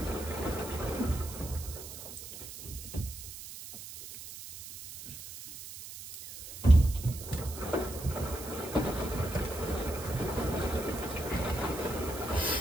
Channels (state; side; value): noise; right; hiss, 12 dB below the sound